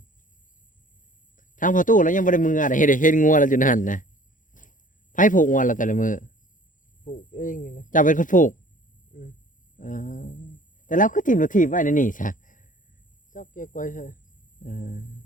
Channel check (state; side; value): late; right; 0.38 ms